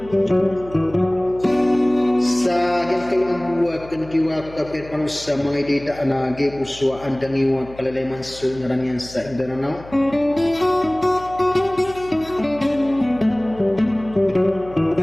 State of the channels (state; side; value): noise; left; hum, 19 dB below the sound